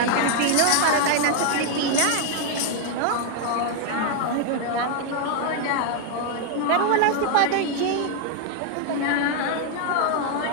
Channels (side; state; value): both; different; correlation 0.00